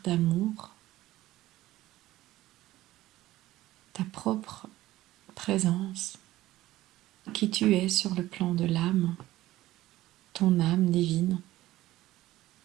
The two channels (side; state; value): left; quieter; 16.0 dB